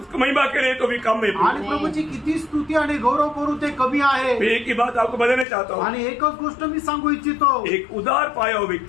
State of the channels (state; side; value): drops out; right; at 5.5 s